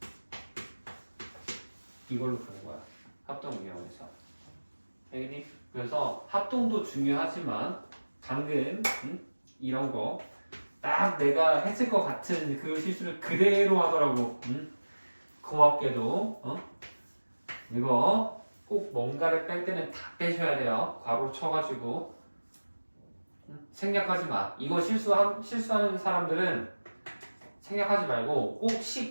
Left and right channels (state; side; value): inverted; both; correlation -1.00